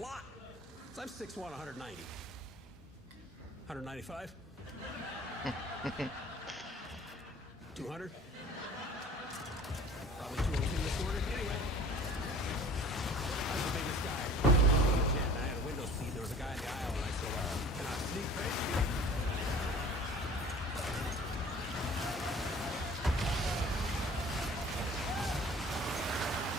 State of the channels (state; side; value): normal; both; correlation 0.46